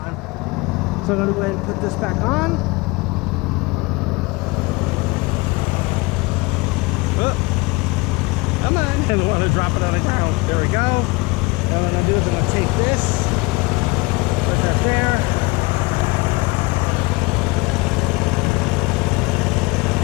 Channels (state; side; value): quieter; right; 24.5 dB